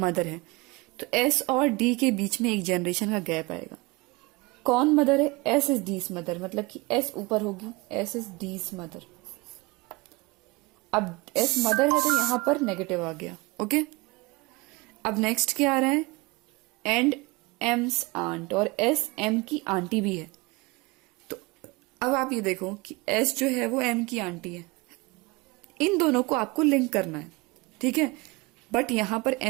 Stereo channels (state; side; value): quieter; left; 24.5 dB